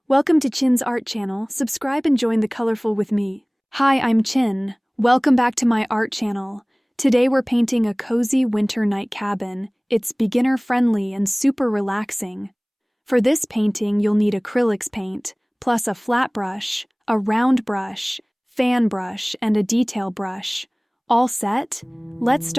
Welcome to Chin's Art Channel. Subscribe and join the colorful with me. Hi, I'm Chin. Welcome back to my art channel. Today we're painting a cozy winter night cabin. It's beginner-friendly and super relaxing. For this painting, you'll need acrylics paint, plus a flat brush, a round brush, fan brush, and a detail brush. All set? Let's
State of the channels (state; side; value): identical; both; correlation 1.00